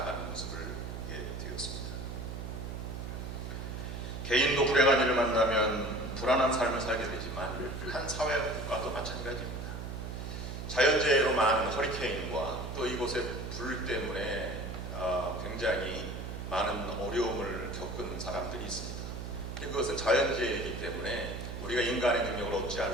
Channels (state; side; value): noise; right; hum, 7 dB below the sound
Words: 모습을 보게 되었습니다. 개인도 불행한 일을 만나면 불안한 삶을 살게 되지만 한 사회 국가도 마찬가지입니다. 자연재해로 많은 허리케인과 또 이곳의 불 때문에 굉장히 많은 어려움을 겪은 사람들이 있습니다. 그것은 자연재해이기 때문에 우리가 인간의 능력을 어찌할